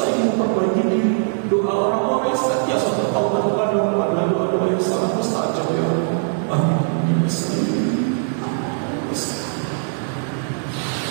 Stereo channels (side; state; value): left; silent; digital silence